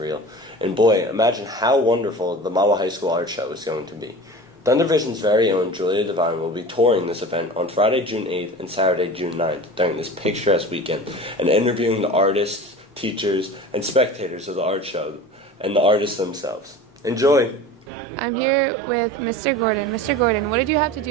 And boy, imagine how wonderful the Mahwah High School Art Show is going to be. Thundervision's very own Julia Devine will be touring this event on Friday, June 8th and Saturday, June 9th during this picturesque weekend and interviewing the artists, teachers, and spectators of the art show and the artists themselves. Enjoy! I'm here with Mr. Gordon. Mr. Gordon, what did you have to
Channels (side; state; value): both; normal; correlation 0.36